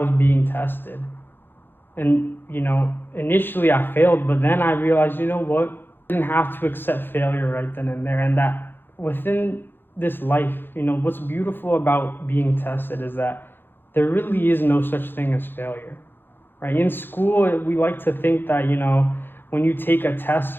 being tested. And initially I failed, but then I realized, you know what, I didn't have to accept failure right then and there. And that within this life, what's beautiful about being tested is that there really is no such thing as failure, right? In school, we like to think that, when you take a test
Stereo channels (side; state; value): right; late; 0.10 ms